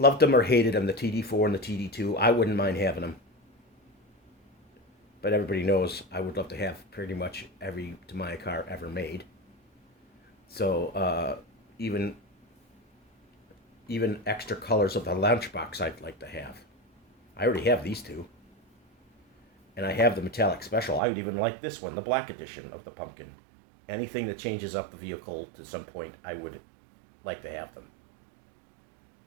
them or hated them, the TD4 and the TD2. I wouldn't mind having them. but everybody knows I would love to have pretty much every Tamiya car ever made. So even extra colors of the lunchbox I'd like to have. I already have these two. And I have the metallic special. I would even like this one, the black edition of the pumpkin. Anything that changes up the vehicle to some point, I would like to have them.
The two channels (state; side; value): drops out; left; at 21.0 s